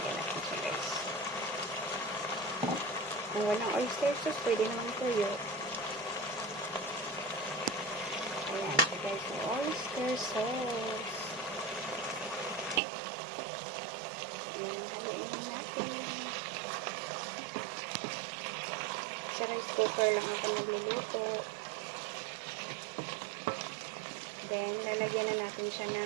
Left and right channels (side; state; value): left; drops out; at 12.8 s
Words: natin siya guys. Kung walang oyster sauce, pwede naman toyo. Ayan siya guys, may oyster sauce. Ayan, haluin lang natin. Sa rice cooker lang ako nagluluto. Then, lalagyan na natin siya